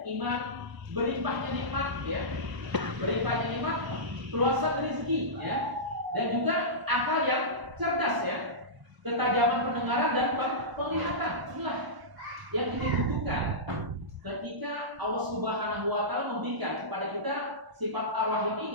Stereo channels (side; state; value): left; late; 1.0 ms